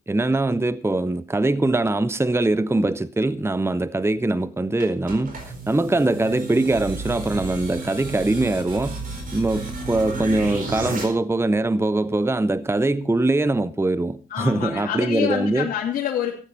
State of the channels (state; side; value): normal; both; correlation 0.85